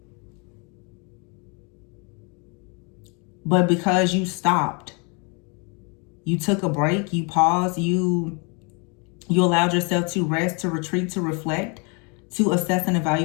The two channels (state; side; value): quieter; right; 33.1 dB